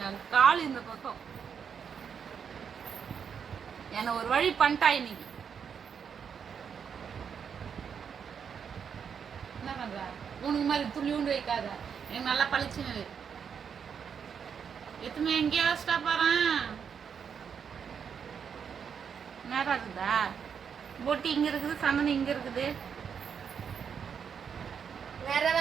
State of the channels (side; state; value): left; quieter; 7.1 dB